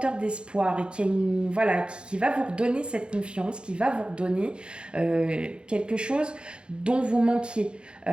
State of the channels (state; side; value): late; left; 0.054 ms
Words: d'espoir et voilà, qui va vous redonner cette confiance, qui va vous redonner quelque chose dont vous manquiez.